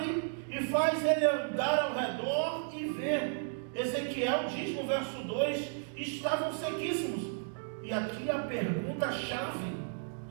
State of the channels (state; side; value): silent; left; digital silence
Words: e faz ele andar ao redor e ver. Ezequiel diz no verso 2, estavam sequíssimos. E aqui a pergunta-chave,